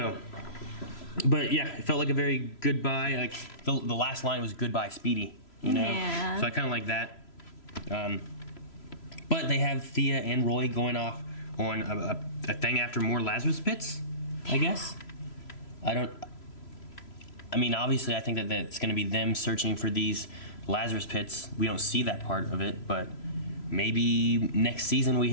but yeah, it felt like a very goodbye. Like the last line was goodbye, Speedy. You know. Yeah. So I kind of like that. But they have Thea and Roy going off on a thing after more Lazarus pits. I guess. I mean, obviously, I think that it's going to be them searching for these Lazarus pits. We don't see that part of it, but maybe next season we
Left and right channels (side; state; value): right; late; 3.0 ms